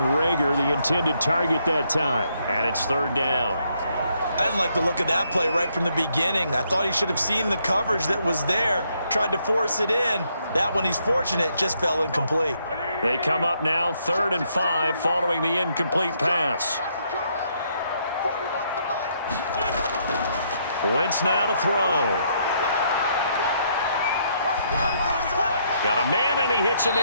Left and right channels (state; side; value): inverted; both; correlation -0.73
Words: Reagor, the intended target that time. And it's 3rd down. I didn't like the look of that play right from the beginning. I thought he should have seen the coverage that was there, tried to force it in. That one, he's fortunate, just fell incomplete. They come up now 3rd and 5 following the incomplete pass. Wentz now to throw. Got a man, and he hits him